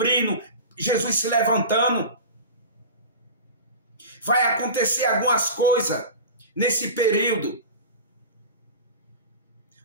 Jesus se levantando. Vai acontecer algumas coisas nesse período.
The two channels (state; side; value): inverted; both; correlation -0.32